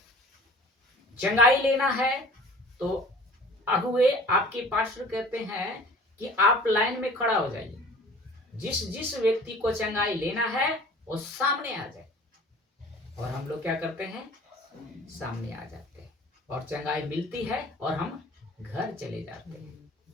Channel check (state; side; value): normal; both; correlation 0.46